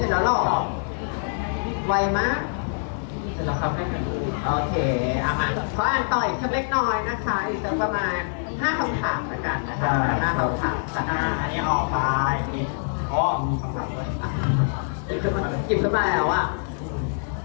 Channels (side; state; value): right; silent; digital silence